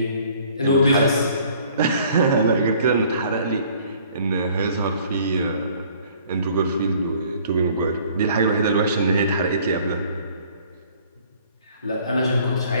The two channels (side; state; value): both; inverted; correlation -0.56